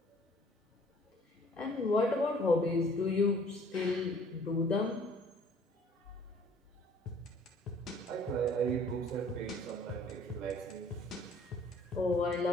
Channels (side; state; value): both; normal; correlation 0.55